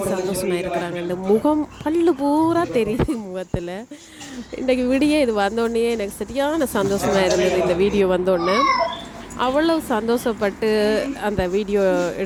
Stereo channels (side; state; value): both; identical; correlation 1.00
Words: சந்தோஷமாக இருக்கிறாங்க. இந்த முகம் பல்லு பூரா தெரியுது முகத்தில். இன்றைக்கு விடிய இது வந்தோடனே எனக்கு சரியான சந்தோஷமாக இருந்தது. இந்த வீடியோ வந்தோடனே அவ்வளவு சந்தோஷப்பட்டு அந்த வீடியோ